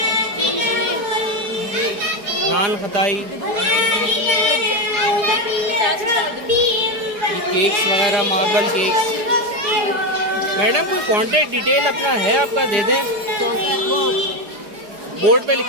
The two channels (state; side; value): late; left; 4.8 ms